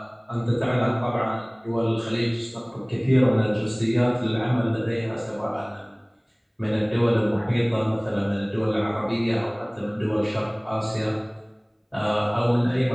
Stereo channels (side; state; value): both; identical; correlation 1.00